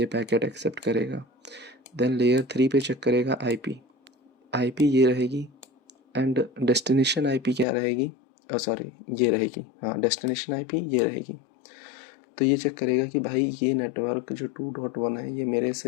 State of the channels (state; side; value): drops out; right; at 7.7 s